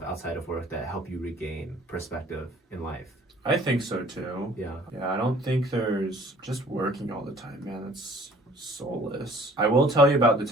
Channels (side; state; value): both; normal; correlation 0.54